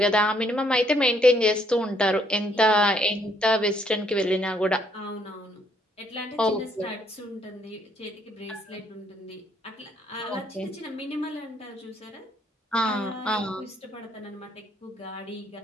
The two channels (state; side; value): normal; both; correlation 0.69